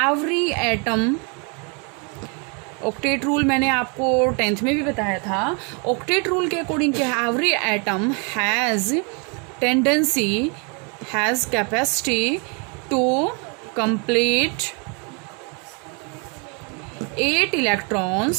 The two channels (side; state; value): left; quieter; 34.8 dB